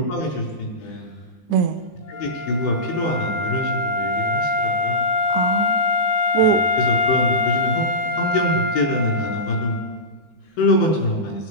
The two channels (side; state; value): right; late; 17 ms